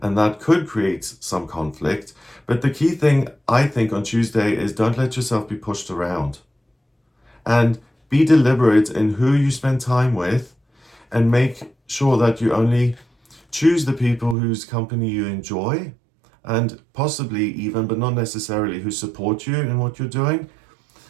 and that could create some conflict. But the key thing, I think, on Tuesday is don't let yourself be pushed around. And be deliberate in who you spend time with, and make sure that you only choose the people whose company you enjoy, and possibly even, but not necessarily, who support you in what you're doing.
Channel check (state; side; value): drops out; left; at 14.4 s